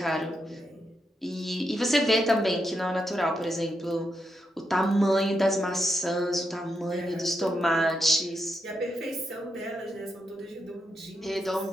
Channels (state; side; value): normal; both; correlation 0.83